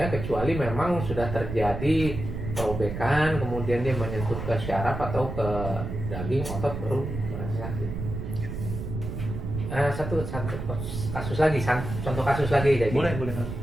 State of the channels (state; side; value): noise; right; rumble, 6 dB below the sound